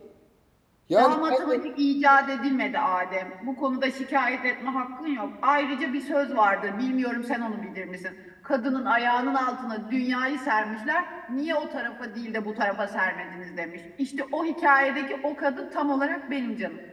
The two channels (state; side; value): identical; both; correlation 1.00